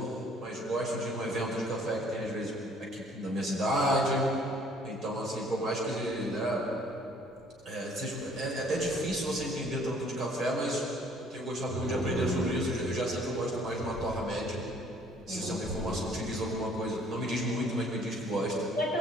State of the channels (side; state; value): both; normal; correlation 0.58